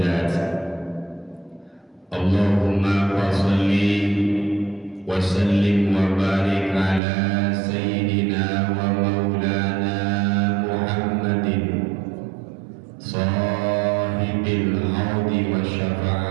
Allahumma wa salli wa sallim wa barik ala sayyidina wa maulana Muhammadin sahibil haudi wa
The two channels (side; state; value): left; drops out; at 7.0 s